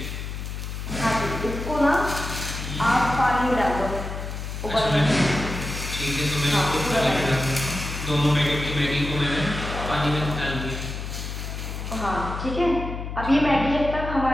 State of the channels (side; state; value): left; noise; hum, 6 dB below the sound